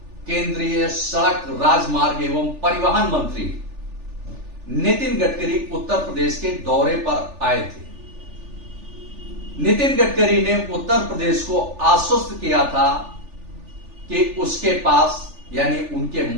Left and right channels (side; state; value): left; late; 3.4 ms